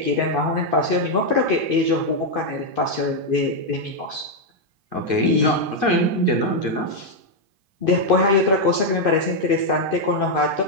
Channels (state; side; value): late; left; 2.5 ms